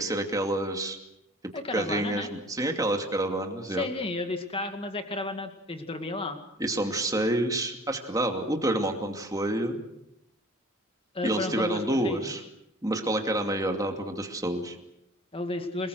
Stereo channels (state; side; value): normal; both; correlation 0.48